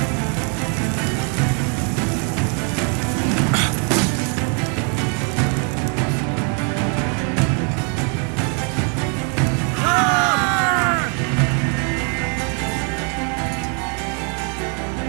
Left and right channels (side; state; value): left; quieter; 38.7 dB